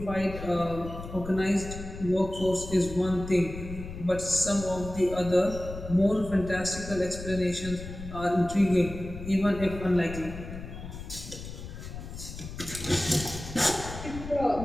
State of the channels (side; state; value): left; noise; rumble, 10 dB below the sound